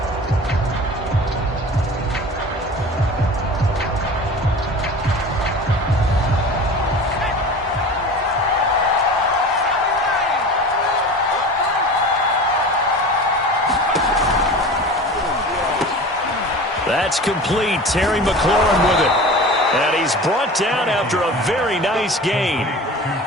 That's complete. Terry McLaurin with it. And he's brought down after a very nice gain.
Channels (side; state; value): both; normal; correlation 0.36